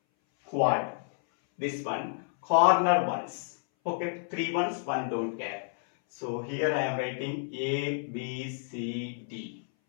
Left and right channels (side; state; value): right; silent; 58 dB below the other